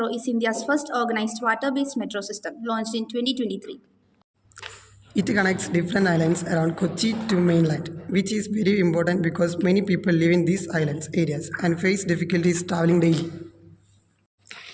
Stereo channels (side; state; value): both; identical; correlation 1.00